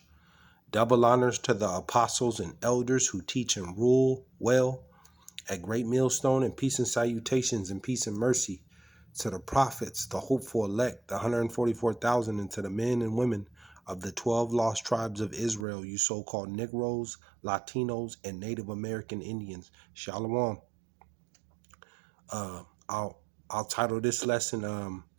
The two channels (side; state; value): left; drops out; at 15.7 s